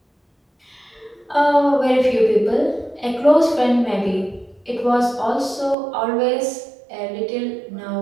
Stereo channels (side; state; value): left; drops out; at 5.8 s